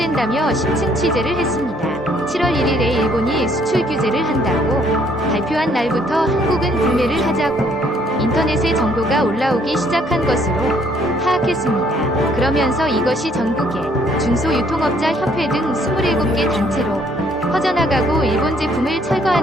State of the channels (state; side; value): normal; both; correlation 0.65